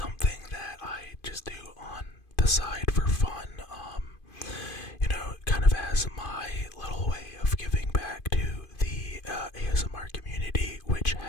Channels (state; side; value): late; right; 2.5 ms